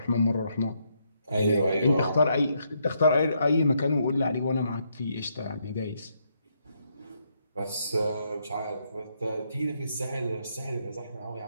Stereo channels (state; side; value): inverted; both; correlation -0.76